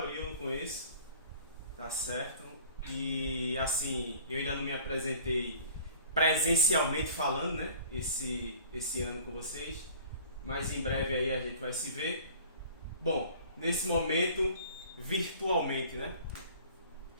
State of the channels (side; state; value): both; inverted; correlation -0.47